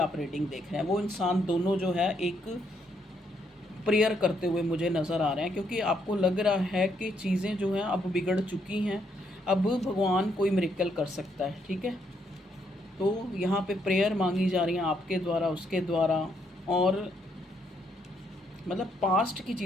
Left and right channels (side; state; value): both; normal; correlation 0.74